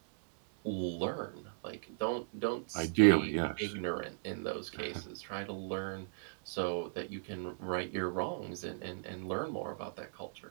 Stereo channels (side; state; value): left; silent; 53 dB below the other